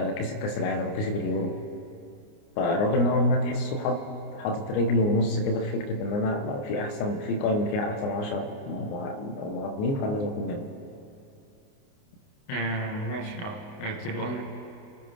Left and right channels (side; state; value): right; late; 29 ms